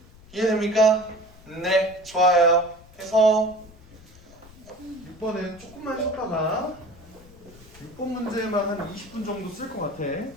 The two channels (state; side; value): noise; left; rumble, 22 dB below the sound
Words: 이해됩니까? 네, 좋아요. 그래서 6번은 조금만 쉬었다가 6번 문제만 한 20분 정도 쓸 것 같아.